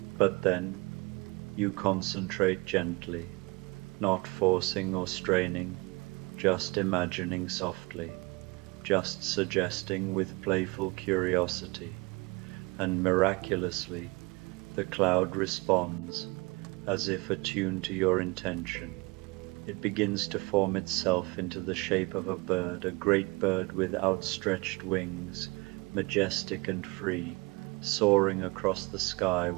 But then, you concentrate gently, not forcing or straining, just imagining softly, just suggesting with playful curiosity, and miraculously, the cloud responds, as if attuned to your intention. It begins to form itself into the shape of a bird, a great bird with outstretched wings, majestic and free, soaring across the sky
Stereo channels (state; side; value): quieter; left; 26.1 dB